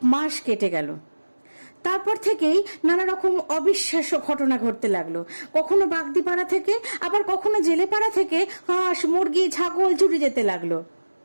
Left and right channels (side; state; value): both; inverted; correlation -1.00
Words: মাস কেটে গেল। তারপর থেকেই নানা রকম অবিশ্বাস্য ঘটনা ঘটতে লাগলো। কখনো বাগদিপাড়া থেকে, আবার কখনো জেলেপাড়া থেকে হাঁস, মুরগি, ছাগল চুরি যেতে লাগলো।